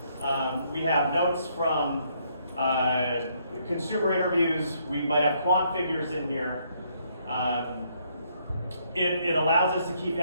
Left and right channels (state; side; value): inverted; both; correlation -0.71